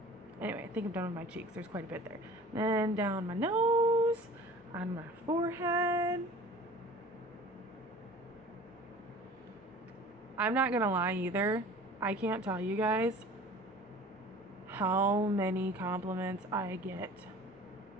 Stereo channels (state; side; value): normal; both; correlation 0.43